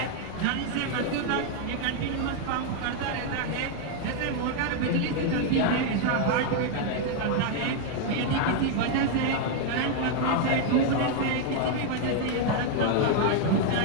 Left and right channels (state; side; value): different; both; correlation 0.00